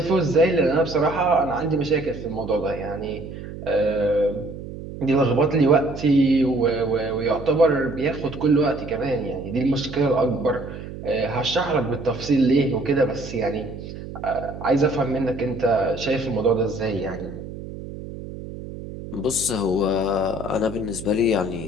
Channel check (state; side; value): noise; right; hum, 11 dB below the sound